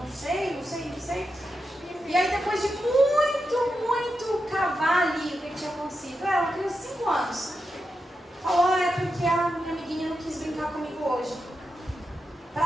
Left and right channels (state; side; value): normal; both; correlation 0.87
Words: sei. E aí depois de muito cavar ali o que tinha acontecido, ela criança de 5 anos, falou, é porque a minha amiguinha não quis brincar comigo hoje.